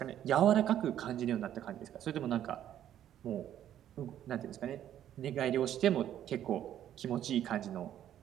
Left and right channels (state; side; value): quieter; left; 11.0 dB